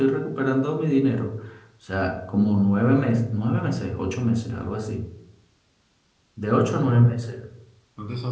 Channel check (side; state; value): both; identical; correlation 1.00